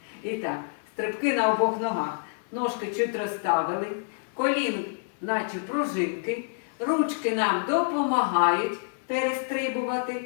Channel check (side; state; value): right; silent; digital silence